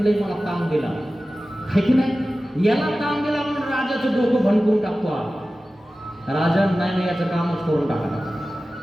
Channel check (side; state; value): both; normal; correlation 0.95